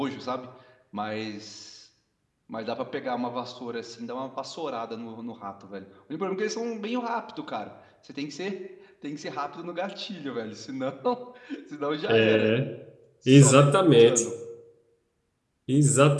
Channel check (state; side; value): identical; both; correlation 1.00